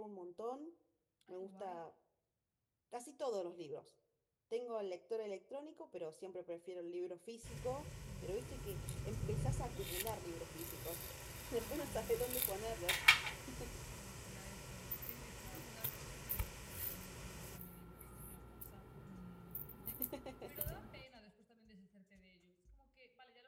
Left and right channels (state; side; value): identical; both; correlation 1.00